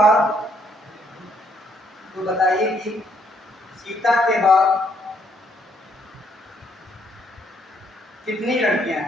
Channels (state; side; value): normal; both; correlation 0.70